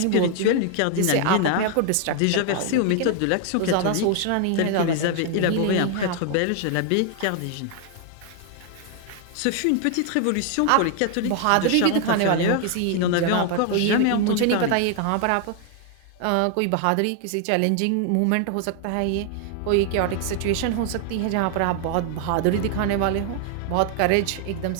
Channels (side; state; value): both; different; correlation 0.00